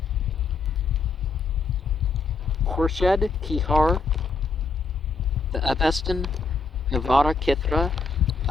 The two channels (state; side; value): quieter; right; 4.3 dB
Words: Khurshid Kihar, the Avestan Navara Kithra